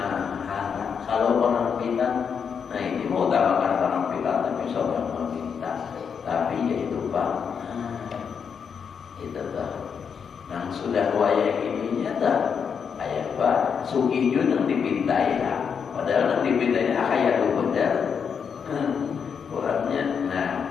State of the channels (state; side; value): quieter; right; 6.7 dB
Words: kalau penampilan, nah ini mau utamakan penampilan tapi seorang meminta, tapi ya itu pak, itu tak, nah sudah wayang ininya tak, ayah pak, sugih juga yang dipintai lah, padahal yang dipintai kayak itu benar, kurangnya,